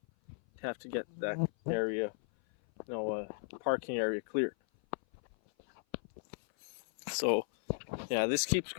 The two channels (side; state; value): right; silent; 54 dB below the other